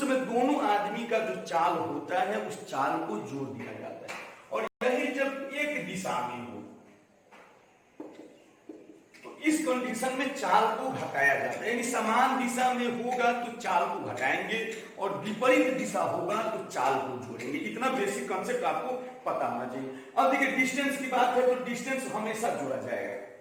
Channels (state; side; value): identical; both; correlation 1.00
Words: समय दोनों आदमी का जो चाल होता है उस चाल को जोड़ दिया जाता है। और यही जब एक दिशा में हो तो इस कंडीशन में चाल को घटाया जाता है, यानी समान दिशा में होगा तो चाल को घटाएंगे और विपरीत दिशा होगा तो चाल को जोड़ेंगे। इतना बेसिक कॉन्सेप्ट आपको पता होना चाहिए। अब देखिए डिस्टेंस की बात है तो डिस्टेंस हमेशा जोड़ा जाएगा।